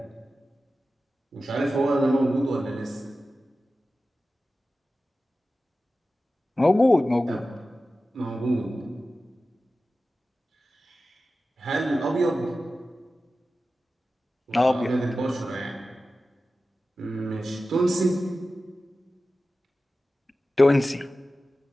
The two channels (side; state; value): both; normal; correlation 0.94